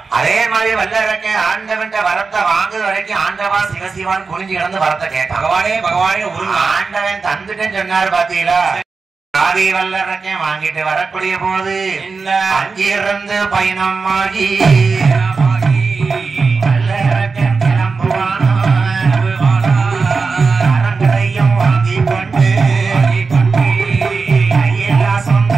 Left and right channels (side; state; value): left; quieter; 4.6 dB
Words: அதே மாதிரி வல்லரக்க ஆண்டவன் வரத்தை வாங்குற வரைக்கும் ஆண்டவா சிவசிவான் குனிஞ்சு கிடந்து வரத்தை கேட்டான். பகவானே பகவானே ஆண்டவன் தந்துட்டேன்னு சொன்னாரு பாத்தீங்களா. ஆதி வல்லரக்க வாங்கிட்டு வரக்கூடிய போது அங்கிருந்து பயணம் ஆகி வல்லரக்கன் கிளம்புவானோ அரங்கரையும் வாங்கி கொண்டு கையிலாசம்